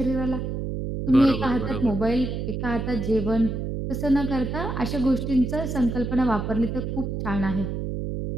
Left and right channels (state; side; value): noise; right; hum, 3 dB below the sound